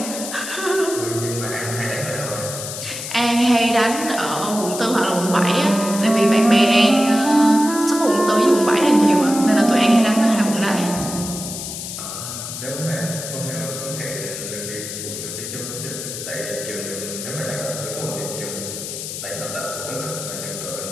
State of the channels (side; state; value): left; noise; hiss, 7 dB below the sound